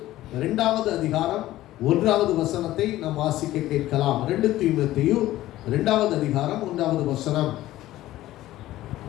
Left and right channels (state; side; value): quieter; right; 15.3 dB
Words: 2வது அதிகாரம் 1வது வசனத்தை நாம் வாசிக்க கேட்கலாம். 2 தீமோத்தேயு 2வது அதிகாரம் 1வது வசனம்.